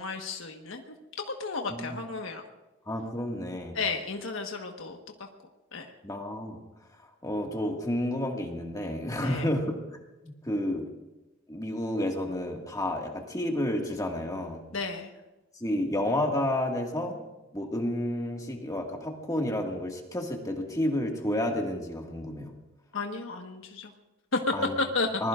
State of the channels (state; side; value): normal; both; correlation 0.51